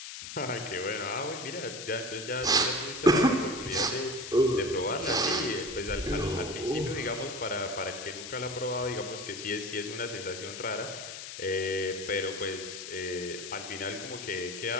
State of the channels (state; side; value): noise; left; hiss, 9 dB below the sound